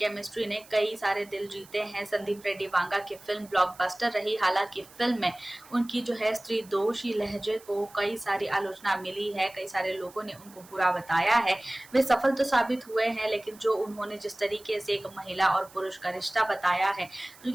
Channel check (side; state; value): right; noise; hiss, 23 dB below the sound